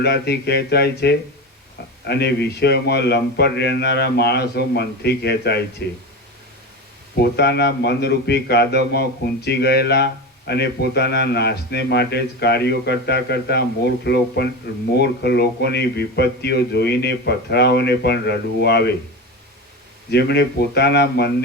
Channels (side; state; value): both; normal; correlation 0.24